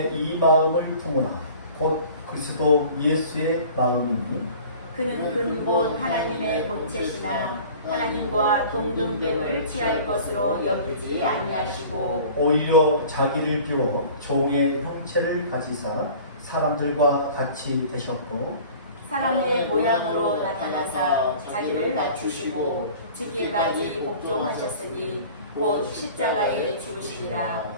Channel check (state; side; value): inverted; both; correlation -0.45